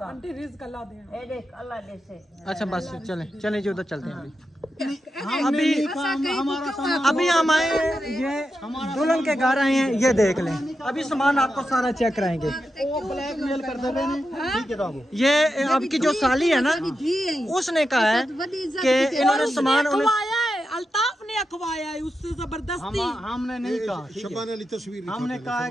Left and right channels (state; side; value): normal; both; correlation 0.88